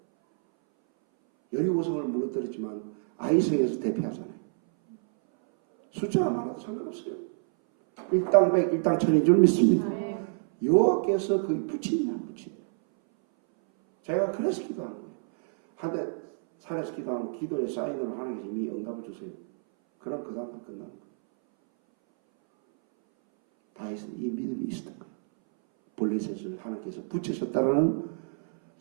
여리고성을 무너뜨렸지만 아이성에서 대피하잖아요. 숫자가 많아도 상관없어요. 일당백 일당천인 줄 믿습니다. 아멘. 여호와께서 그 붙이느냐 안 붙이느냐. 제가 그래서 기도하는 거예요. 한때 산에서 기도하면 기도의 사인으로 하나님께서 이미 응답을 주세요. 그럼 그 다음부터 끝나는 거예요. 다윗은 이 믿음이 있었던 거예요. 블레셋을 하나님께서 붙이셨다는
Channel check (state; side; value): silent; left; 59 dB below the other